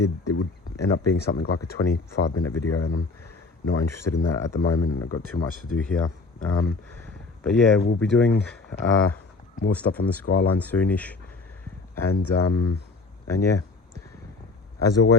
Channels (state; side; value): quieter; right; 3.8 dB